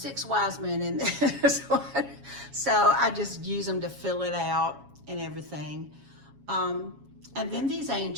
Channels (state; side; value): late; left; 7.2 ms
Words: wise men in this one. So I just use them to fill it out and everything. And then these